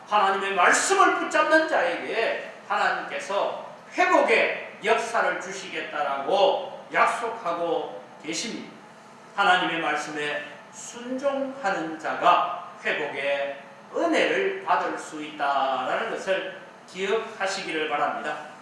하나님의 말씀을 붙잡는 자에게 하나님께서 회복의 역사를 주시겠다라고 약속하고 계십니다. 하나님의 말씀에 순종하는 자가 회복의 은혜를 받을 수 있다라는 것을 기억하시기를 바랍니다.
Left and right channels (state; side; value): identical; both; correlation 1.00